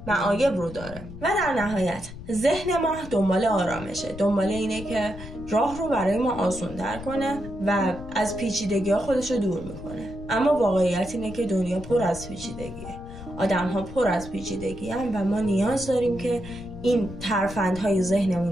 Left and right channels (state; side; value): noise; left; rumble, 14 dB below the sound